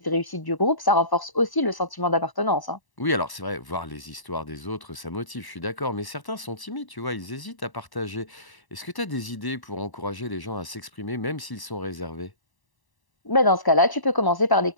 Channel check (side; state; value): right; late; 1.0 ms